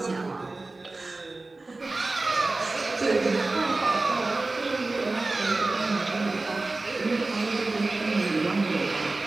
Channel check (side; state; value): left; quieter; 3.2 dB